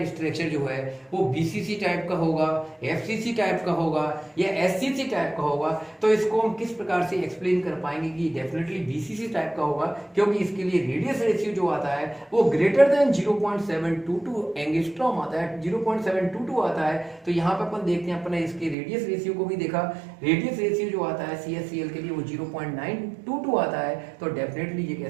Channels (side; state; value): left; drops out; at 18.8 s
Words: स्ट्रक्चर जो है वो BCC टाइप का होगा, FCC टाइप का होगा या SCC टाइप का होगा। तो इसको हम किस प्रकार से एक्सप्लेन कर पाएंगे कि डेफिनेटली BCC टाइप का होगा, क्योंकि इसके लिए रेडियस रेशियो जो आता है वो ग्रेटर देन 0.722 एंगस्ट्रॉम आता है, 0.722 आता है। तो यहाँ पे अपन देखते हैं, अपने इसके रेडियस रेशियो को भी देखा, रेडियस रेशियो जो आता है CL के लिए वो 0.922 आता है। तो डेफिनेटली ये